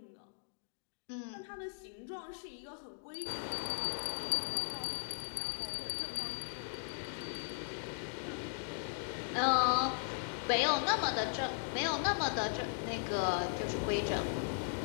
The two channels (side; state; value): right; silent; digital silence